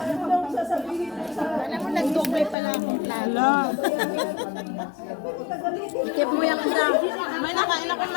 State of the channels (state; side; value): drops out; right; at 2.6 s